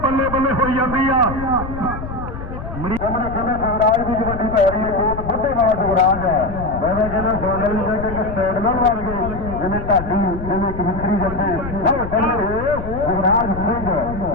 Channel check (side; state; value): left; noise; rumble, 9 dB below the sound